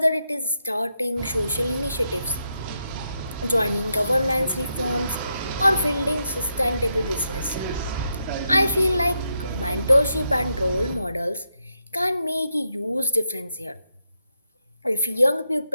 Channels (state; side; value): inverted; both; correlation -0.82